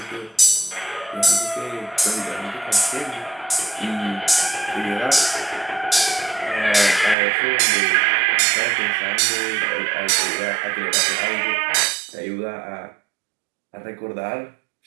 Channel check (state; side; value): drops out; left; at 7.2 s